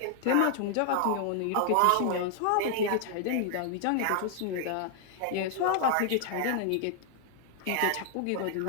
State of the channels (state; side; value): different; both; correlation 0.00